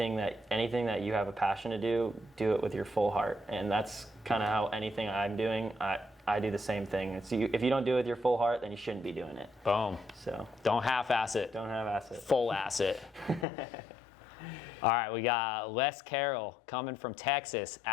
that you have a passion to do it with your full heart. And that's kind of how anything I'm doing, I do the same thing. If you don't do it with your full heart, then you shouldn't be doing it. Boom. So don't half-ass it. Don't half-ass it. Full ass it. All right, we got Les Carroll coming from Texas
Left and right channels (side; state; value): right; drops out; at 13.5 s